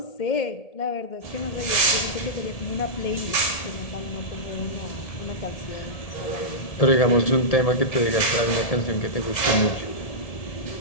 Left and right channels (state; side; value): late; right; 1.7 ms